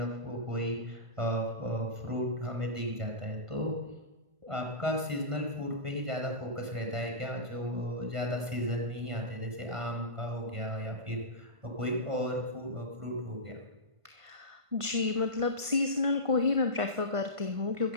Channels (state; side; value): late; left; 1.5 ms